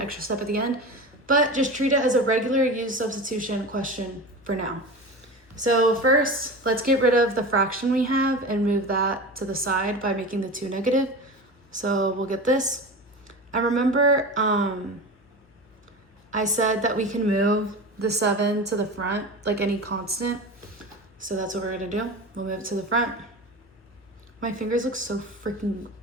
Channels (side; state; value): both; normal; correlation 0.29